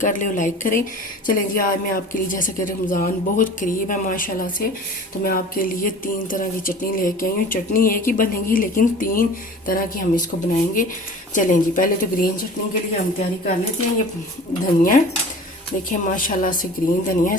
कर ले और लाइक करें। चलें जी, आज मैं आपके लिए, जैसे कि रमज़ान बहुत करीब है माशाल्लाह से, तो मैं आपके लिए 3 तरह की चटनी लेके आई हूँ। चटनी एक ही बनेगी लेकिन 3 तरह की हम इसको बनाएंगे। चलें जी, पहले तो ग्रीन चटनी के लिए हम तैयारी कर लेते हैं। ये धनिया देखिए माशाल्लाह से ग्रीन धनिया,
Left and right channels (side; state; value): both; normal; correlation 0.42